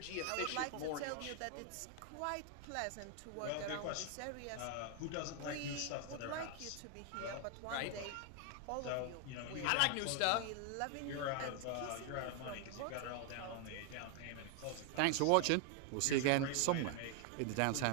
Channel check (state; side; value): different; both; correlation 0.01